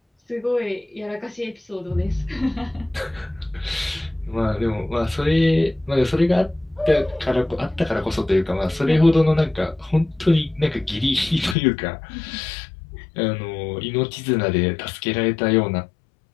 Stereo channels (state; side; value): drops out; right; at 11.6 s